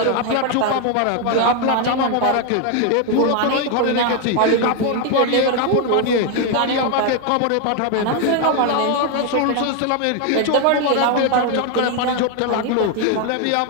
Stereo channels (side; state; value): both; different; correlation 0.01